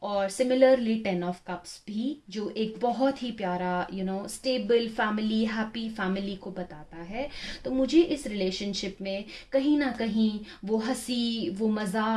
और सिमिलरली 10 ऑफ कप्स भी, जो एक बहुत ही प्यारा स्टेबल फैमिली, हैप्पी फैमिली को बताता है। तो मुझे इस रिलेशनशिप में कहीं ना कहीं वो हंसी, वो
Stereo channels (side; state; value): both; identical; correlation 1.00